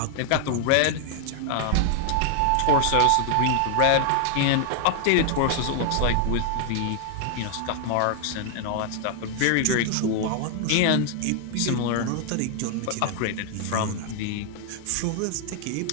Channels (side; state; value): both; different; correlation 0.00